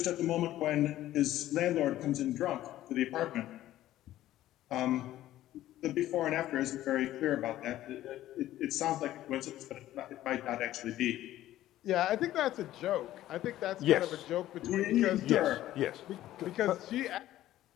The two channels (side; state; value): right; quieter; 14.0 dB